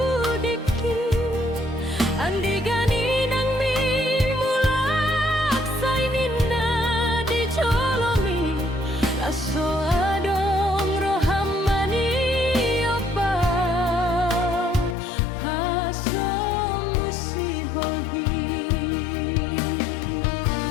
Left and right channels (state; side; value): drops out; right; at 15.0 s